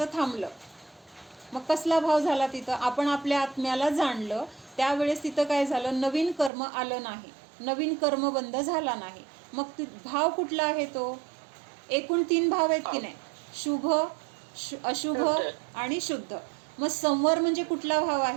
थांबलं. मग कसला भाव झाला तिथं? आपण आपल्या आत्म्याला जाणलं, त्यावेळेस तिथं काय झालं? नवीन कर्म आलं नाही, नवीन कर्मबंध झाला नाही. मग भाव कुठला आहे तो? एकूण 3 भाव आहेत की नाही? शुभ, अशुभ आणि शुद्ध. मग संवर म्हणजे कुठला भाव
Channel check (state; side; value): drops out; left; at 6.5 s